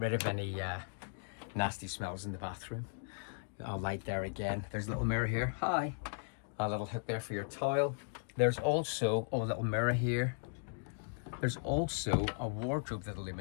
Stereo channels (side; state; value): right; silent; digital silence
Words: rid of any nasty smells in the bathroom. I'll light there again. There's a little mirror here. Hi. A little hook there for your towel. There's also a little mirror here. There's also a wardrobe that